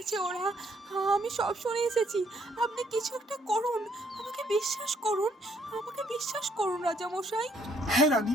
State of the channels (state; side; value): normal; both; correlation 0.67